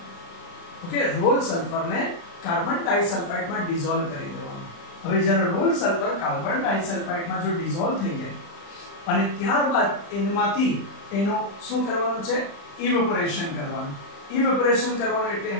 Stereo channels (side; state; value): right; late; 35 ms